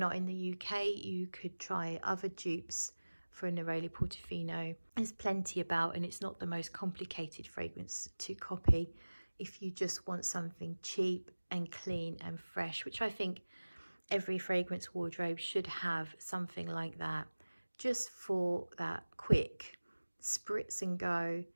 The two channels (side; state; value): both; inverted; correlation -1.00